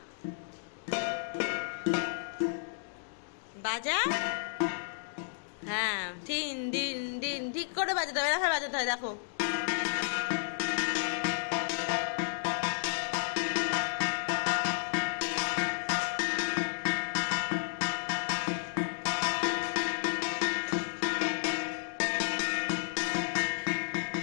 বাজা। হ্যাঁ, দিন দিন দিন, ঠিক করে বাজাতে হবে, এরকম বাজাতে হয়, দেখো।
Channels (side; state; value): right; silent; digital silence